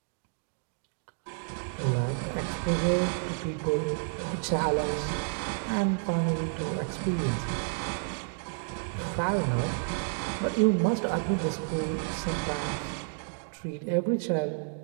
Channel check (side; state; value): left; silent; 58 dB below the other